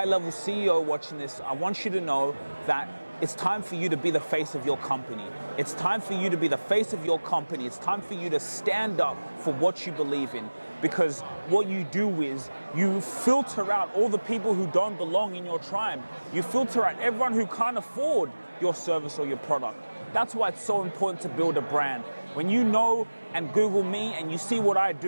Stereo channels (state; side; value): inverted; both; correlation -1.00